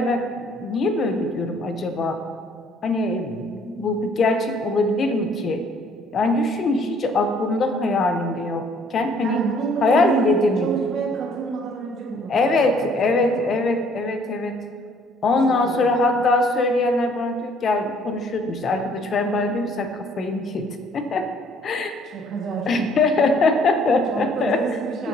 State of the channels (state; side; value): normal; both; correlation 0.60